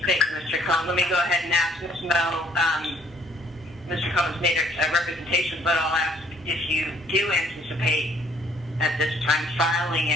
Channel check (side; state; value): right; noise; hum, 29 dB below the sound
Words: Cohen. Let me go ahead and ask Ms. Mo. Mr. Cohen's made a representation, but I'll ask if you do anticipate at this time filing